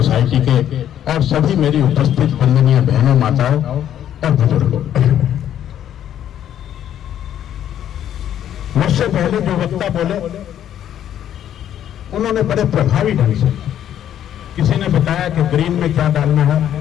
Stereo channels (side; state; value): right; quieter; 10.6 dB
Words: के और सभी मेरी उपस्थित वंदनीय बहनों, माताओं और बुजुर्गों। मुझसे पहले जो वक्ता बोले उन्होंने बड़े प्रभावी ढंग से, किसी ने बताया कि ग्रीन में क्या डालना है